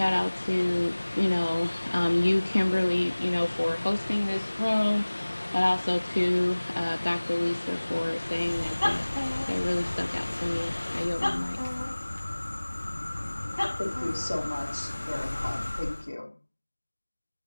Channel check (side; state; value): both; inverted; correlation -1.00